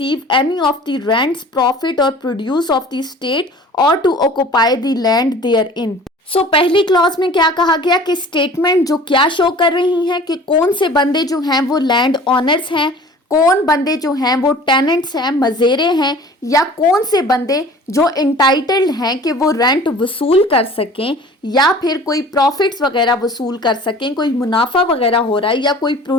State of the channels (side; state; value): both; normal; correlation 0.45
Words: any of the rents, profit or produce of the state or to occupy the land therein. सो पहली clause में क्या कहा गया कि statement जो क्या show कर रही हैं कि कौन से बंदे जो हैं वो लैंड ऑनर्स हैं, कौन बंदे जो हैं वो टेनेंट्स हैं, मजेरे हैं, या कौन से बंदे जो इंटाइटल्ड हैं कि वो रेंट वसूल कर सकें या फिर कोई प्रॉफिट्स वगैरह वसूल कर सकें, कोई मुनाफा वगैरह हो रहा है, या कोई